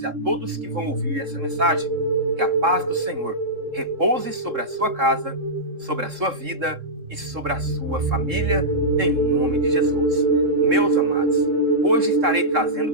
e a todos que vão ouvir essa mensagem. Que a paz do Senhor repouse sobre a sua casa, sobre a sua vida e sobre a sua família, em nome de Jesus. Meus amados, hoje estarei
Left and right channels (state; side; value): late; left; 3.7 ms